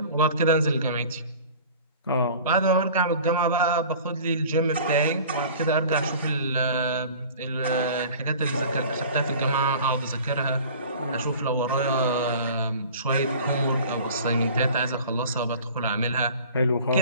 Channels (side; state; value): both; inverted; correlation -0.43